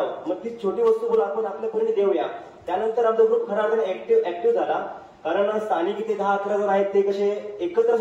मग ती छोटी वस्तू बोला आपण आपल्यापर्यंत देऊया. त्यानंतर आमचा ग्रुप खरा अर्थाने ऍक्टिव्ह झाला, कारण स्थानिक इथे 10-11 जण आहेत ते कसे एकत्र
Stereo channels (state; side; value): identical; both; correlation 1.00